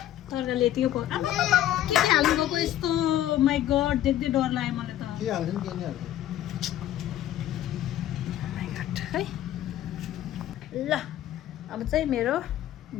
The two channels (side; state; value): right; quieter; 12.6 dB